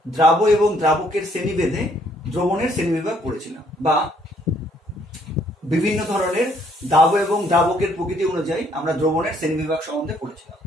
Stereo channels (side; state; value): both; normal; correlation 0.66